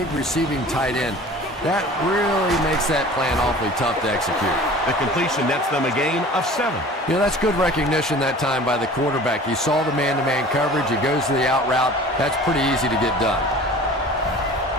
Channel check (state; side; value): normal; both; correlation 0.43